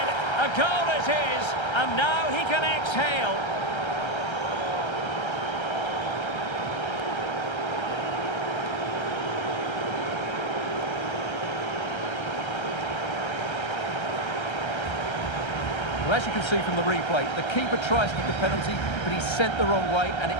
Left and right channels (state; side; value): late; right; 1.3 ms